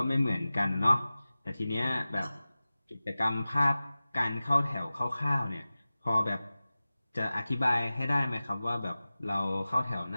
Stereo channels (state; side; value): inverted; both; correlation -0.97